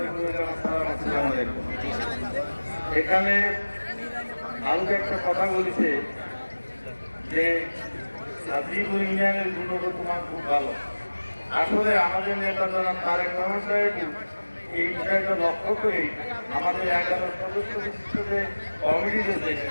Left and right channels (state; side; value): inverted; both; correlation -1.00